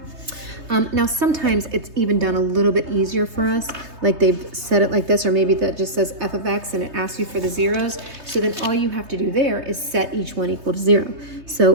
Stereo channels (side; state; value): left; late; 3.3 ms